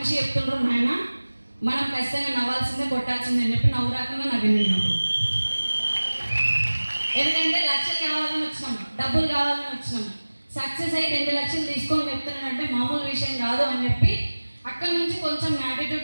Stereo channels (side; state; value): both; inverted; correlation -1.00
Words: చెప్తుండ్రు, నాయన మనం ఖచ్చితంగా నవ్వాల్సిందే, కొట్టాల్సిందే అని చెప్పి నవ్వు రాకుండా నవ్వినప్పుడు. ఎందుకంటే లక్షలు కావాలని వచ్చినాం, డబ్బులు కావాలని వచ్చినాం. సక్సెస్ అయ్యి 2 లక్షలు తీసుకొని చెప్తున్నానంటే మామూలు విషయం కాదు అని చెప్పి అక్కడి నుంచి కొంచెం